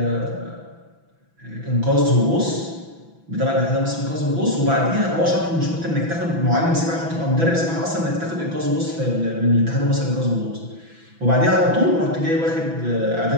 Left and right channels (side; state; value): left; late; 6.0 ms